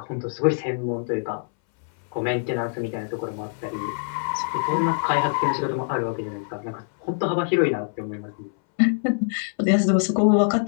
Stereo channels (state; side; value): silent; right; 62 dB below the other